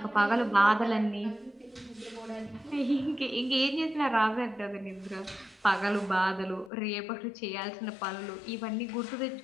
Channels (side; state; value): right; drops out; at 6.7 s